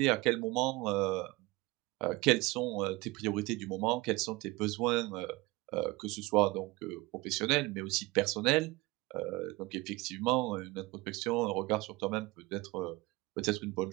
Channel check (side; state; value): left; quieter; 22.0 dB